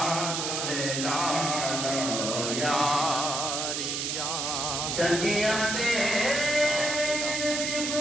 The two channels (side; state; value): right; noise; hiss, 1 dB below the sound